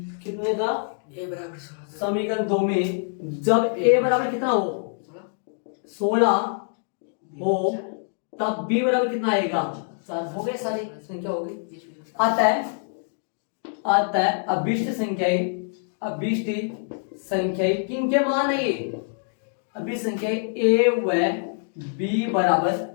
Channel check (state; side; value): silent; right; digital silence